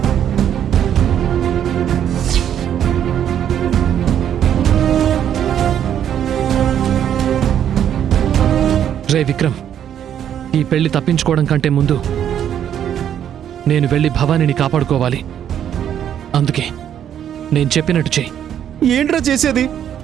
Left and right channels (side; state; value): left; quieter; 9.7 dB